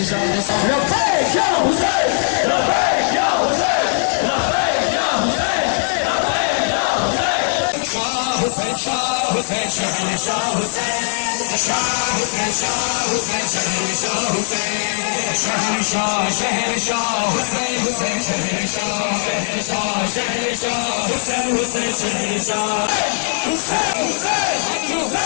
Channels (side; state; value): right; silent; digital silence